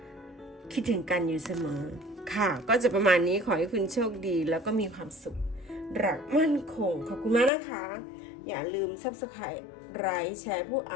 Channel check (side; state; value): right; drops out; at 7.5 s